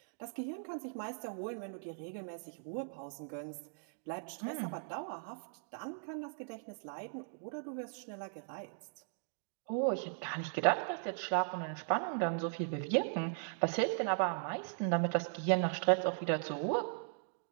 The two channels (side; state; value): left; silent; digital silence